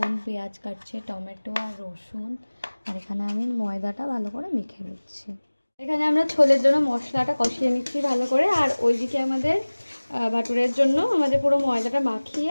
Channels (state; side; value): inverted; both; correlation -1.00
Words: পেঁয়াজ কাটছে, টমেটো আর রসুন, আর এখানে আমি ময়দাটা ভালো করে মেখে নিচ্ছি। এখানে আমরা ছোলের জন্য মশলাটা কষিয়ে নিচ্ছি ভালো করে, আর ওইদিকে আমাদের ভাটুরের জন্য আমাদের পুরো ময়দাটা মাখিয়ে